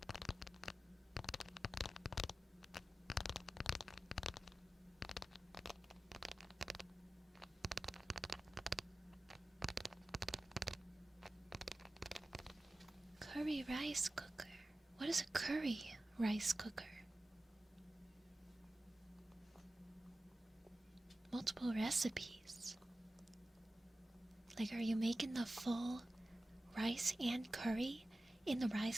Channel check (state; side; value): normal; both; correlation 0.95